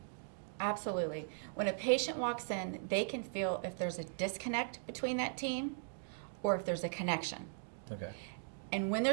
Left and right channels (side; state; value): left; silent; digital silence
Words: Absolutely. When a patient walks in, they can feel if there's a disconnect between that team or if there's a connection. Okay. And when